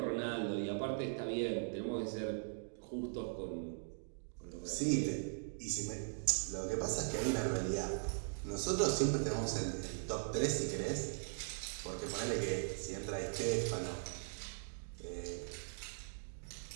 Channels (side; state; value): left; silent; digital silence